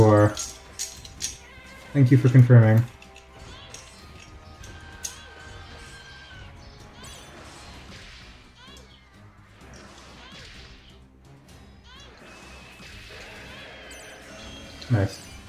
Thank you for confirming. Nice.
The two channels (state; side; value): identical; both; correlation 1.00